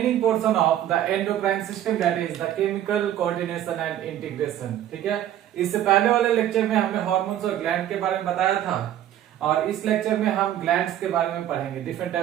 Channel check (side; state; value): left; quieter; 11.7 dB